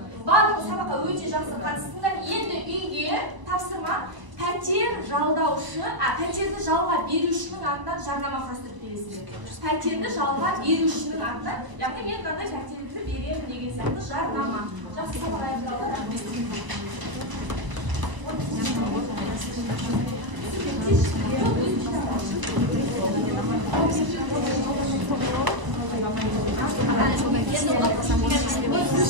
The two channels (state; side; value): late; left; 1.0 ms